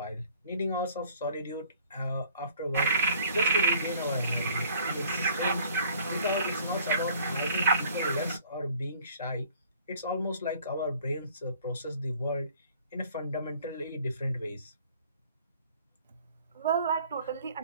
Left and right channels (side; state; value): both; inverted; correlation -0.55